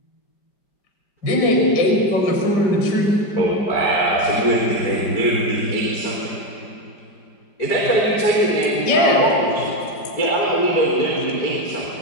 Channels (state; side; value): late; right; 5.0 ms